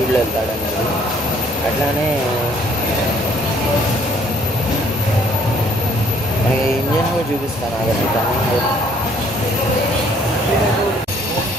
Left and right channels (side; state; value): both; normal; correlation 0.62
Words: వెళ్తాడు అనేది. అట్లానే మనకి ఇంజన్ కూడా చూపిస్తాను ఆగండి.